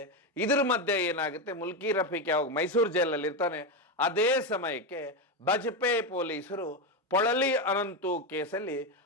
ಇದ್ರ ಮಧ್ಯೆ ಏನಾಗುತ್ತೆ, ಮುಲ್ಕಿ ರಫೀಕ್ ಯಾವಾಗ ಮೈಸೂರು ಜೈಲಲ್ಲಿ ಇರ್ತಾನೆ ಅದೇ ಸಮಯಕ್ಕೆ ಬಜಪೆ ಪೊಲೀಸರು ಪೊಳಲಿ ಅನಂತು ಕೇಸಲ್ಲಿ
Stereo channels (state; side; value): normal; both; correlation 0.11